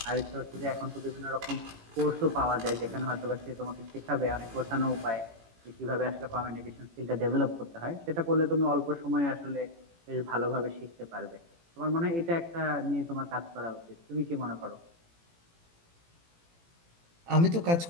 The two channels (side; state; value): left; late; 18 ms